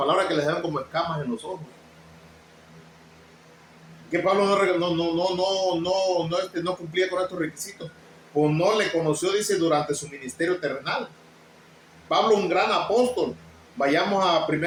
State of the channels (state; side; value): identical; both; correlation 1.00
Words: que les dan como escamas en los ojos. Que Pablo no cumplía con estos requisitos, pues no le conoció, dice, durante su ministerio terrenal. Pablo, un gran apóstol. Vayamos a